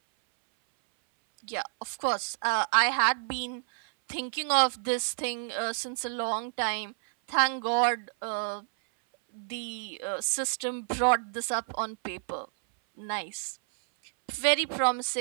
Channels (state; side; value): silent; left; 58 dB below the other